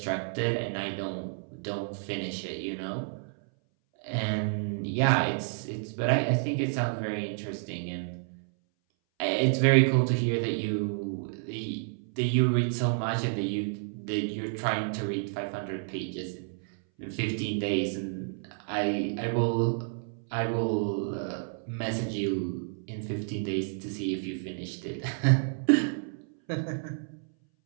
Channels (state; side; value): silent; left; 58 dB below the other